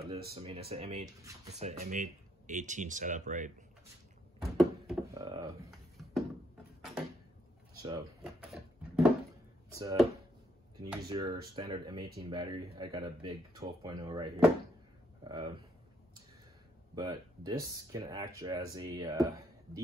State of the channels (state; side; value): normal; both; correlation 0.73